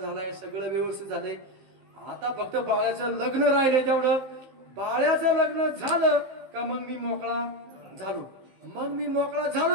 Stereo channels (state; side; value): late; left; 15 ms